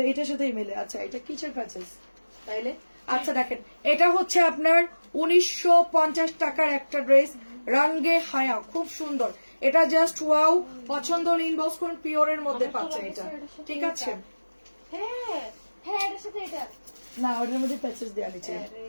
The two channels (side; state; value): both; inverted; correlation -1.00